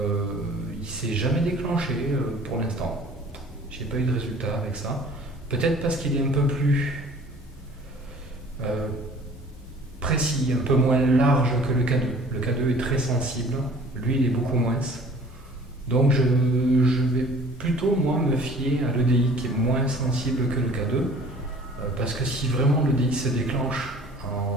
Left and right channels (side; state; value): both; normal; correlation 0.50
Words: ne s'est jamais déclenché pour l'instant. J'ai pas eu de résultat avec ça. Peut-être parce qu'il est un peu plus précis, un peu moins large que le K2. Le K2 est très sensible, lui il est beaucoup moins. Donc je vais plutôt moi me fier à l'EDI qui est moins sensible que le K2, parce que si vraiment l'EDI se déclenche